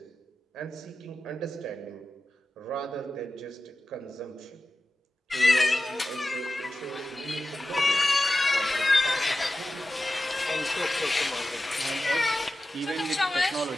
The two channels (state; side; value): normal; both; correlation 0.93